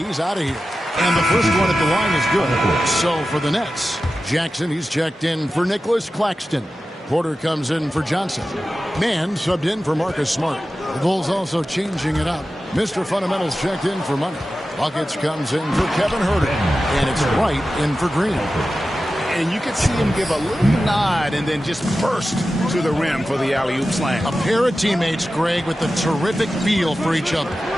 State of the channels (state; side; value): normal; both; correlation 0.93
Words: out of here. And the first one at the line is good. So for the Nets, Jackson, he's checked in for Nicholas Claxton. Porter comes in for Johnson. Mann subbed in for Marcus Smart. The Bulls also changing it up. Mr. Fundamentals checked in for Money. Buckets comes in for Kevin Herter. And it's Wright in for Green. And you could see him give a little nod and then just burst to the rim for the alley-oop slam. A pair of teammates, Greg, with a terrific feel for each other.